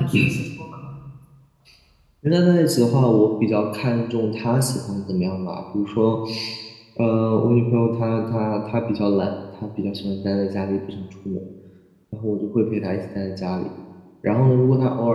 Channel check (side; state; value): both; identical; correlation 1.00